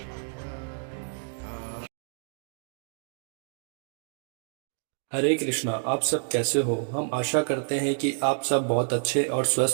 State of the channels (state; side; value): silent; left; digital silence